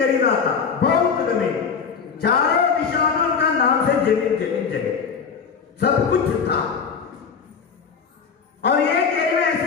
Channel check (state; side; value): quieter; right; 6.1 dB